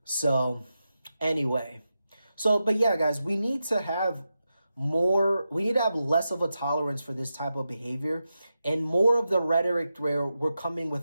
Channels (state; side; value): inverted; both; correlation -0.90